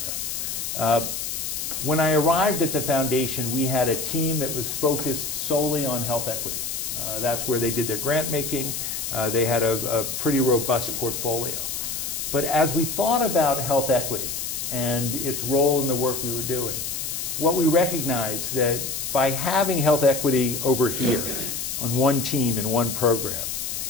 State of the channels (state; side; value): noise; left; hiss, 4 dB below the sound